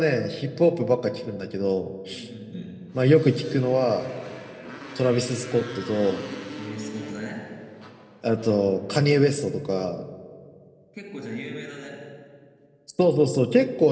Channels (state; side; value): identical; both; correlation 1.00